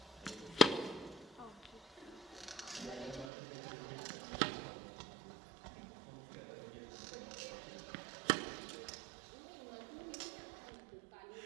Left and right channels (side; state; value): left; drops out; at 3.3 s